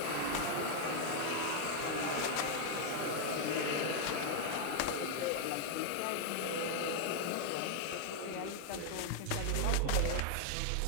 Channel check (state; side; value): different; both; correlation 0.00